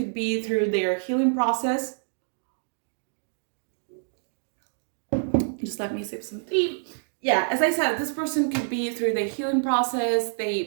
be through their healing process. Just let me sip some tea. Yeah, as I said, this person could be through their healing process. They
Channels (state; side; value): silent; left; digital silence